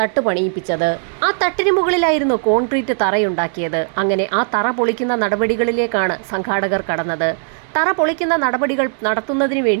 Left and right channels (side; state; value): left; silent; 67 dB below the other